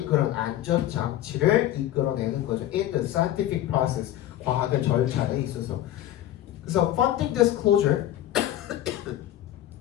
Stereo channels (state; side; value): quieter; right; 13.0 dB